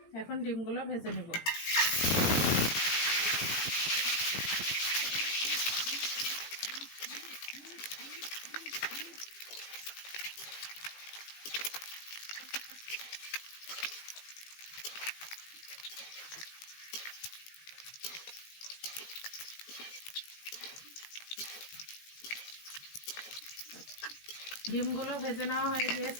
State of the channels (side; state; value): right; late; 18 ms